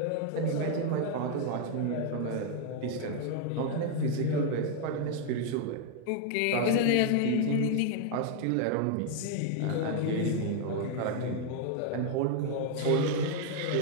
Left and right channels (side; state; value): both; different; correlation 0.00